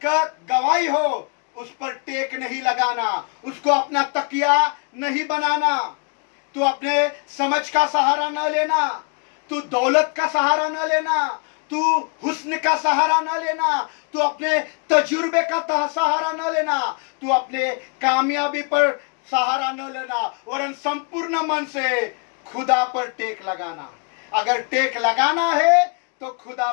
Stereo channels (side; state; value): right; quieter; 36.9 dB